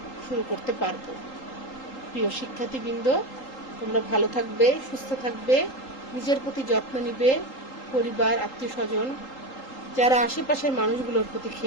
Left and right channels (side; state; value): right; late; 3.8 ms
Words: শুরু করতে পারবো। প্রিয় শিক্ষার্থীবৃন্দ, তোমরা ভালো থাকবে, সুস্থ থাকবে, নিজের প্রতি যত্ন নিবে, পরিবার, আত্মীয় স্বজন, যারা আশেপাশের মানুষগুলোর প্রতি